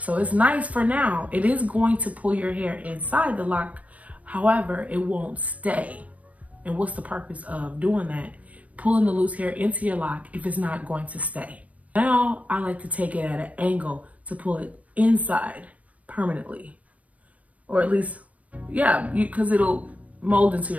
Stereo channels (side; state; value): left; late; 0.070 ms